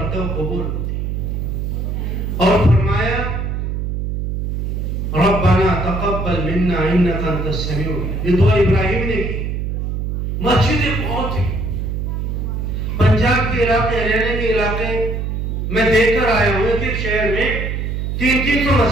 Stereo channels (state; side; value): noise; right; hum, 2 dB below the sound